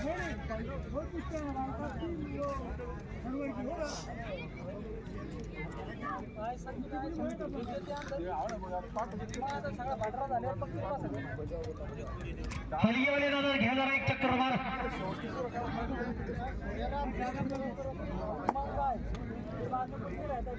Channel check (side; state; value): both; identical; correlation 1.00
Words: हलगीवाले दादा घ्या जरा एक चक्कर मार.